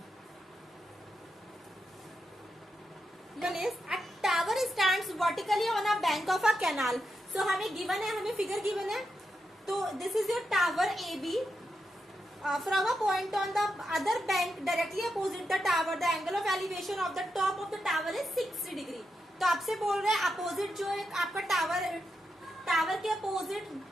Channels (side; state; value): both; normal; correlation 0.86